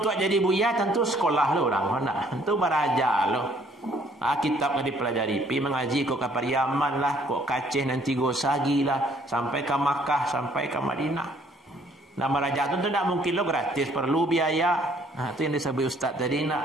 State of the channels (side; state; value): both; normal; correlation 0.62